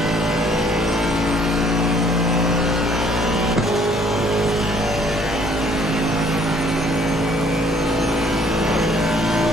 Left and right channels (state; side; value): normal; both; correlation 0.61